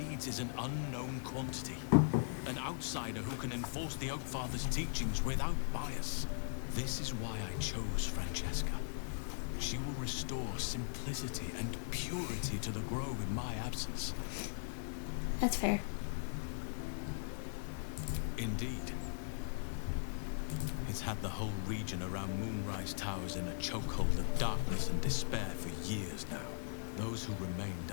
is an unknown quantity. An outsider who can enforce the Oakfather's teachings without bias. This is why I chose Francesca. She will restore simplicity and purity to the Grove in my absence. That's fair. Indeed. It's had the whole region around Moonrise Towers in a chokehold of darkness and despair for years now. Those who remained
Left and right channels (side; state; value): right; silent; digital silence